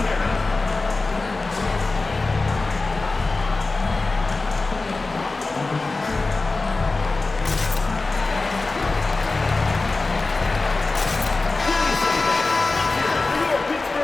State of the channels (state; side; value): quieter; right; 3.5 dB